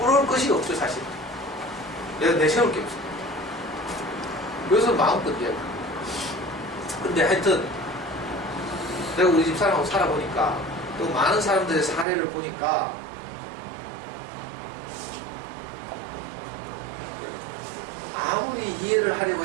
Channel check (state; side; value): drops out; left; at 12.1 s